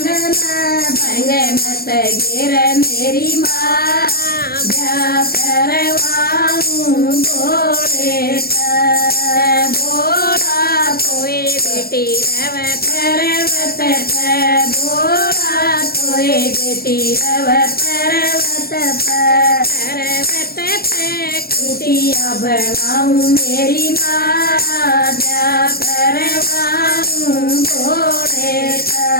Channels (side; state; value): right; late; 0.44 ms